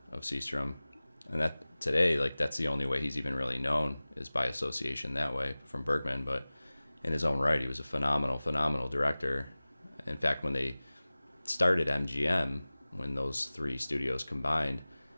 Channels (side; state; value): both; inverted; correlation -0.98